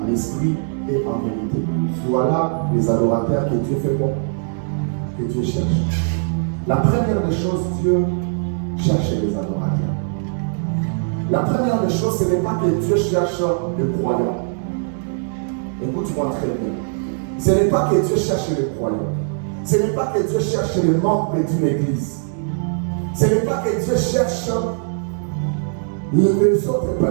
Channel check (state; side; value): silent; left; 65 dB below the other